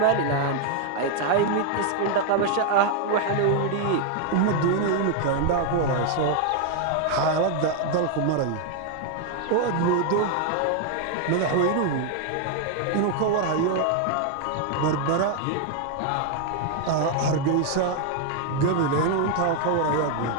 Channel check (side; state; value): both; different; correlation 0.00